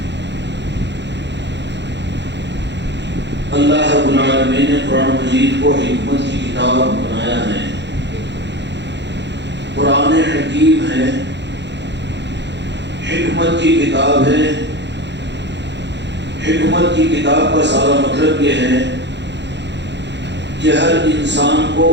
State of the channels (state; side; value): late; left; 0.51 ms